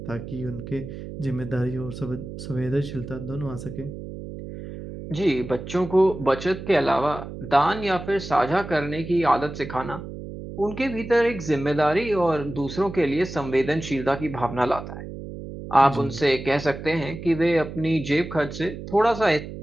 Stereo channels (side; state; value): right; noise; hum, 10 dB below the sound